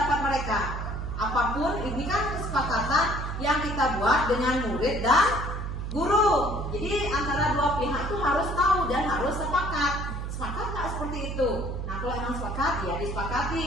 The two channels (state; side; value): noise; right; hum, 4 dB below the sound